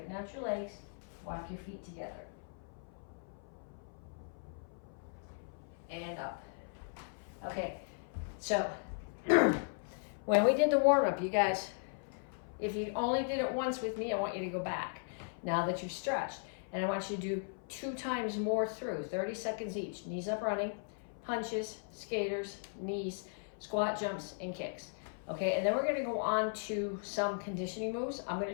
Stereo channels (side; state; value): right; silent; 53 dB below the other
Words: out your legs, walk your feet together. And up. Okay, so when we did the warm-up, you guys, if you only did it once with me, I want you to go back now that you've stretched. And I want you to do 2 times more through, 30 seconds each. Knees up running, punches, skaters, knees, squat jumps, and kicks. Okay, and then we're going to go on to some conditioning moves. I'm going